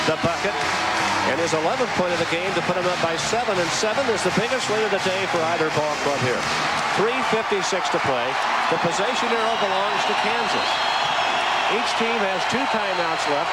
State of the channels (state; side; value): identical; both; correlation 1.00